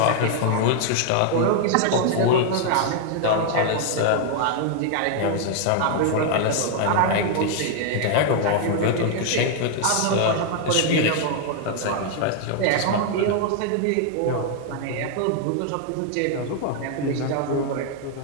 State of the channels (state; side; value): different; both; correlation 0.00